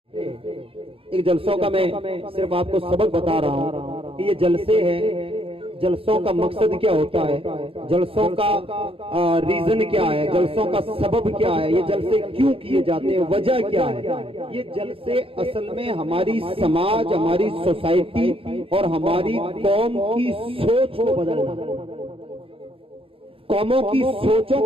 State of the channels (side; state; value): left; late; 0.27 ms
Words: ایک جلسوں کا میں صرف آپ کو سبق بتا رہا ہوں کہ یہ جلسے ہیں، جلسوں کا مقصد کیا ہوتا ہے، جلسوں کا ریزن کیا ہے، جلسوں کا سبب کیا ہے، یہ جلسے کیوں کیے جاتے ہیں، وجہ کیا ہے۔ یہ جلسے اصل میں ہماری سماج، ہماری سوسائٹی اور ہماری قوم کی سوچ کو بدلنا، قوموں کی سوچوں